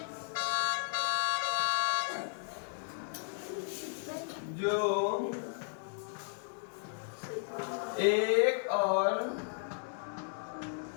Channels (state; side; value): silent; right; digital silence